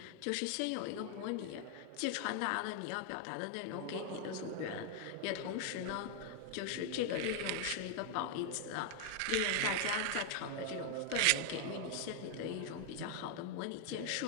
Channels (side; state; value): both; different; correlation 0.00